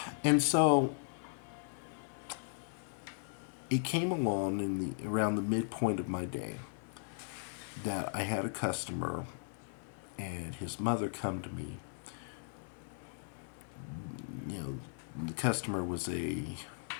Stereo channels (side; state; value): right; silent; digital silence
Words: And so it came along around the midpoint of my day that I had a customer and his mother come to me. The customer was a